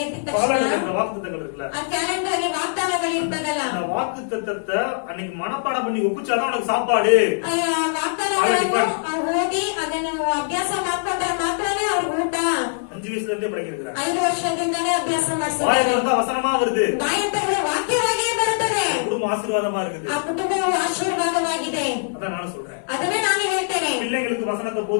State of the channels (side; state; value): right; silent; digital silence